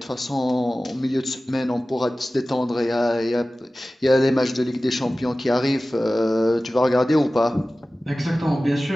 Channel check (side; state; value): both; normal; correlation 0.96